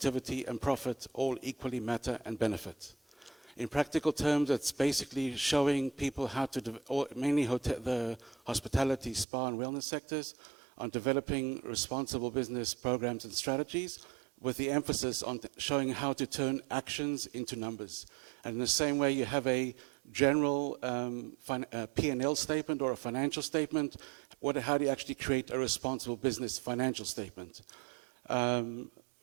and profit all equally matter and benefit. In practical terms, it's basically showing people how to, mainly the hospitality, spa, and wellness sectors, on developing responsible business programs and strategies, with the emphasis on showing how to turn actions into numbers. And in the same way, you have a general P&L statement or a financial statement. How do you actually create a responsible business financial statement?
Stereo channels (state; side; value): drops out; left; at 9.2 s